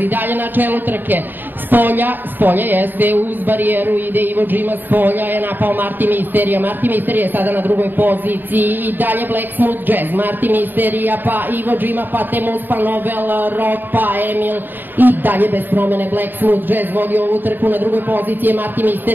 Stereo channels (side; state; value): left; late; 0.092 ms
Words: dalje na čelu trke, s polja jeste uz barijeru, ide Ivo Džima s polja, je napao Martin Misterija je sada na drugoj poziciji i dalje Black Smooth Jazz, Martin Misterija, pa Ivo Džima, pa Temuz, pa Novel Rock, pa Emil i dalje bez promene Black Smooth Jazz vodi ovu trku, na drugoj poziciji je Martin